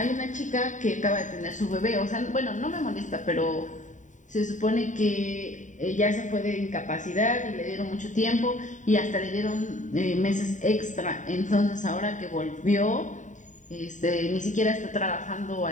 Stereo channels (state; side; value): late; right; 0.36 ms